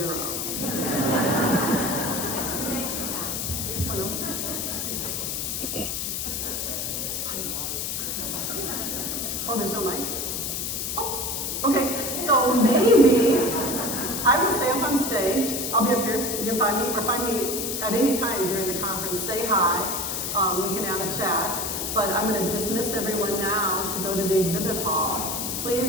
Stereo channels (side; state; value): left; noise; hiss, 2 dB below the sound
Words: Bueno. Oh, there's no mics? Oh, okay. So maybe I will stay up on stage. I'll be up here. You can find me, or find me at any time during the conference. Say hi. We can have a chat. But I'm going to dismiss everyone now to go to the exhibit hall.